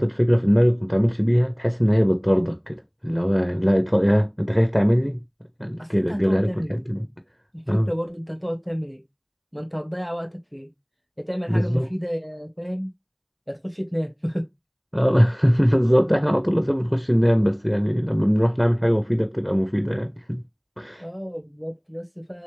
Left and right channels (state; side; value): identical; both; correlation 1.00